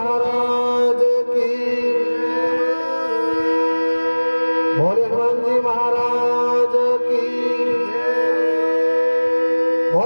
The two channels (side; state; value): both; inverted; correlation -1.00